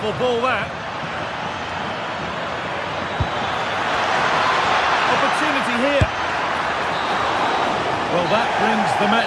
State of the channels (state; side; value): identical; both; correlation 1.00